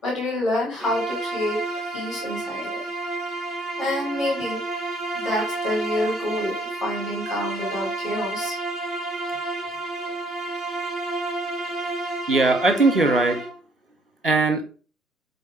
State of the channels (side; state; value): both; normal; correlation 0.63